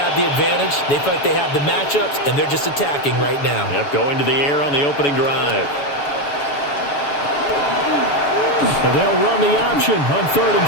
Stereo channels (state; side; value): late; right; 7.0 ms